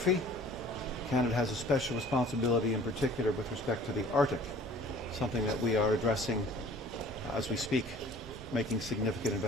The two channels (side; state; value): both; normal; correlation 0.49